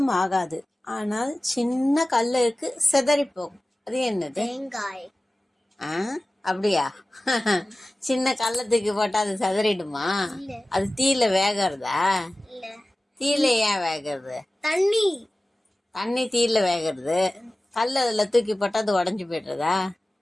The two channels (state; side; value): normal; both; correlation 0.97